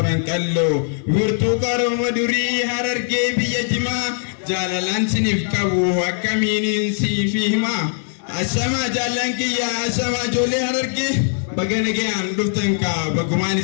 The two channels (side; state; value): right; silent; digital silence